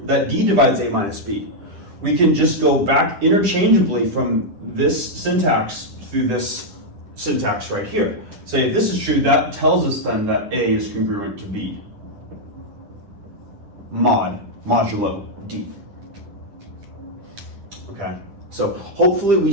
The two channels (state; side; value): late; left; 10 ms